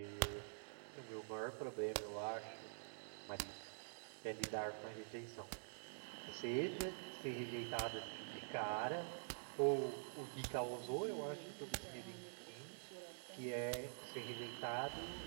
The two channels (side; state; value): left; silent; digital silence